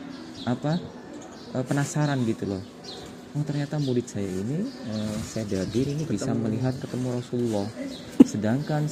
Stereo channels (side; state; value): both; identical; correlation 1.00